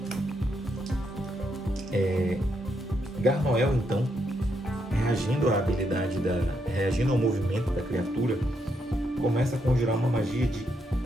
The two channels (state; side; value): normal; both; correlation 0.78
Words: 11. Garnoel, então, reagindo ao movimento da criatura, começa a conjurar uma magia de